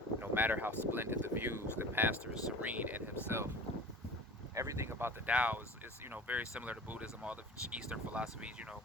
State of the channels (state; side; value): normal; both; correlation 0.38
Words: no matter how splendid the views, the master is serene in himself. Everything about the Tao is very similar to Buddhism, all the Eastern philosophies,